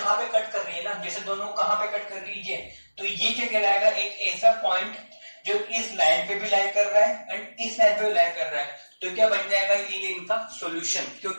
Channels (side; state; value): both; inverted; correlation -1.00